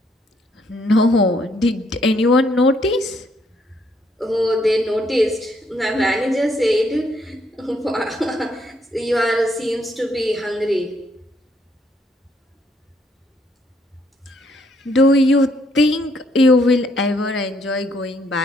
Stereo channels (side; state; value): both; normal; correlation 0.71